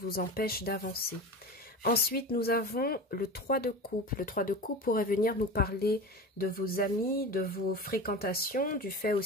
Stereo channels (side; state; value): both; normal; correlation 0.30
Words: empêchent d'avancer. Ensuite, nous avons le 3 de coupe. Le 3 de coupe pourrait venir nous parler de vos amis, de vos fréquentations, du fait